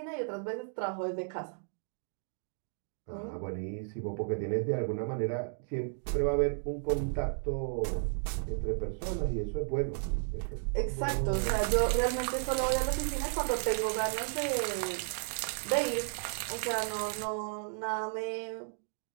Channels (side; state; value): left; silent; digital silence